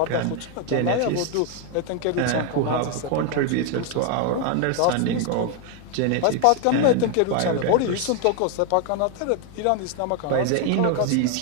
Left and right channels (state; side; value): different; both; correlation 0.01